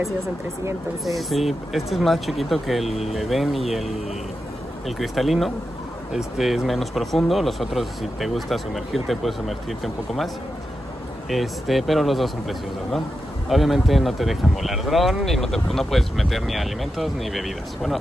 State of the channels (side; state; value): both; normal; correlation 0.89